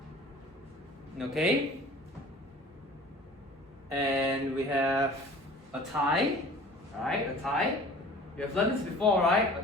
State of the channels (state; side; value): normal; both; correlation 0.45